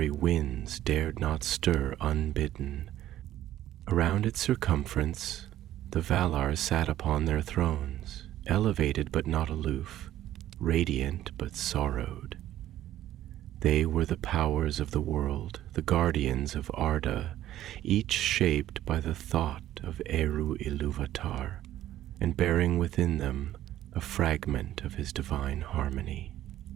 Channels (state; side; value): quieter; left; 13.1 dB